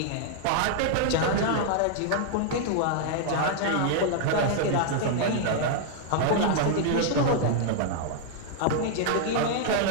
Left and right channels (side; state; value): both; different; correlation -0.01